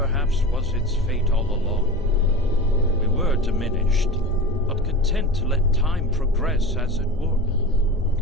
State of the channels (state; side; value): normal; both; correlation 0.32